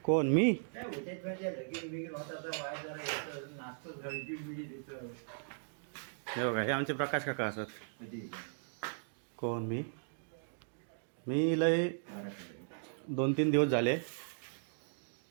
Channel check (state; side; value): silent; left; digital silence